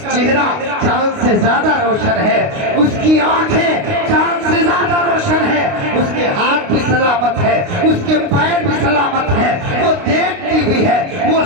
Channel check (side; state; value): left; late; 29 ms